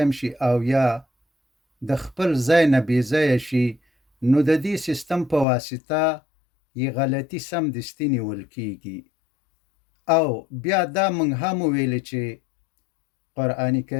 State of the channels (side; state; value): right; drops out; at 5.5 s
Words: شي او یا د خپل ځای نه بې ځایه شي، نو د دې سیستم په واسطه یې غلطي سمدستي نیول کیږي. او بیا دا مونږ هم ویل چې قرآن